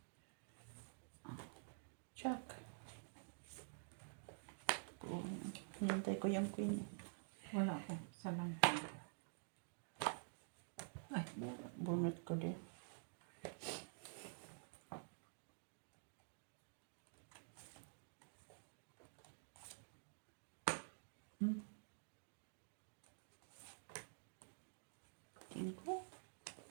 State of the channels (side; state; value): left; silent; digital silence